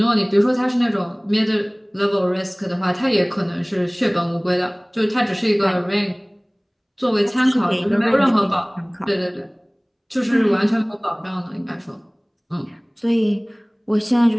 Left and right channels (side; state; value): both; identical; correlation 1.00